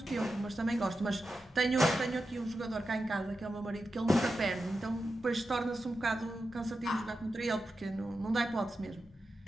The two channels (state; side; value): normal; both; correlation 0.90